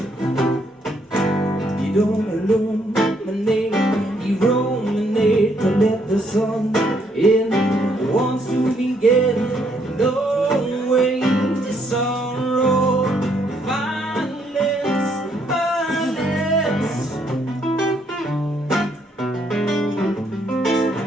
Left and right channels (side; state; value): both; normal; correlation 0.71